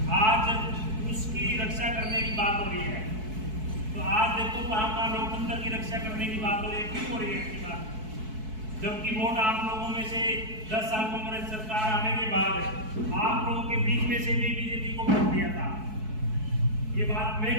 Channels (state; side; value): late; left; 4.6 ms